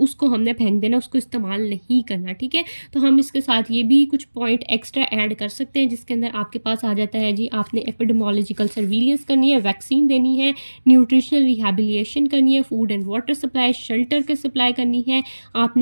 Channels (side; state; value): both; inverted; correlation -1.00